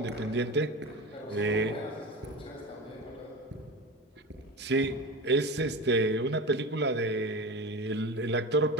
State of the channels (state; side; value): normal; both; correlation 0.27